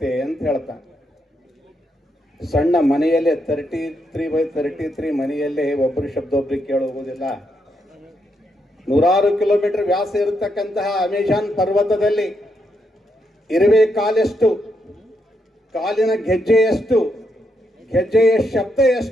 ಅಂತ ಹೇಳ್ತಾನೆ. ಸಣ್ಣ ಮನೆಯಲ್ಲೇ 33x33 ಮನೆಯಲ್ಲೇ ಒಬ್ಬರು ಶಬ್ದ ಒಬ್ರಿಗೆ ಕೇಳಿ ಹೋಗೋದಿಲ್ಲ. 100 ಕಿಲೋಮೀಟರ್ ವ್ಯಾಸ ಇರತಕ್ಕಂತಹ ಅಮೆಜಾನ್ ಪರ್ವತದಲ್ಲಿ ಇರುವೆ ಕಾಲೆಷ್ಟು, ಕಾಲಿನ ಗೆಜ್ಜೆಯಷ್ಟು, ಗೆಜ್ಜೆಯ ಶಬ್ದ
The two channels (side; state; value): both; normal; correlation 0.80